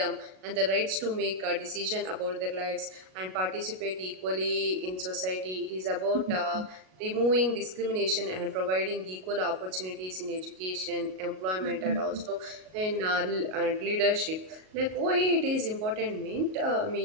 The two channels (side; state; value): left; late; 38 ms